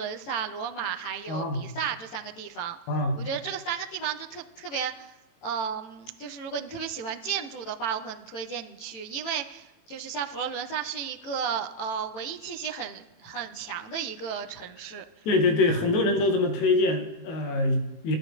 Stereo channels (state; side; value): late; right; 18 ms